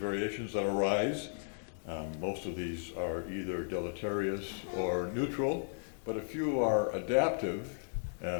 that arise. Most of these are either deleterious or neutral, but a few are adaptive,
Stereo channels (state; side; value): silent; right; digital silence